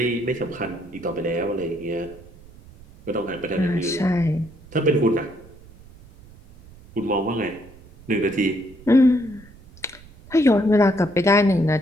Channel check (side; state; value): right; noise; rumble, 22 dB below the sound